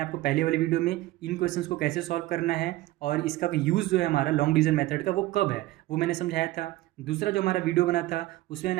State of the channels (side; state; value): left; quieter; 17.4 dB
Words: पहले वाले वीडियो में इन क्वेश्चंस को कैसे सॉल्व करना है और इसका यूज़ जो है हमारा लॉन्ग डिवीजन मेथड का वो कब है वो मैंने समझाया था। दूसरा जो हमारा वीडियो बना था उसमें